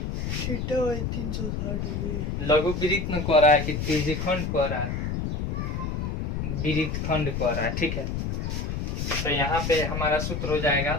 लघु वृत्त में कह रहा है कि त्रिज्यखंड कह रहा है, वृत्त खंड कह रहा है, ठीक है। तो यहाँ पे हमारा सूत्र हो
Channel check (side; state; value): left; noise; rumble, 2 dB below the sound